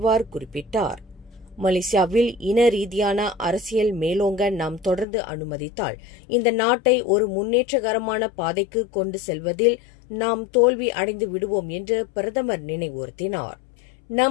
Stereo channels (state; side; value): drops out; right; at 5.1 s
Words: குறிப்பிட்டார். மலேசியாவில் இன ரீதியான அரசியல் மேலோங்க நாம் தொடர்ந்து அனுமதித்தால் இந்த நாட்டை ஒரு முன்னேற்றகரமான பாதைக்கு கொண்டு செல்வதில் நாம் தோல்வி அடைந்து விடுவோம் என்று பிரதமர் நினைவுறுத்தினார்.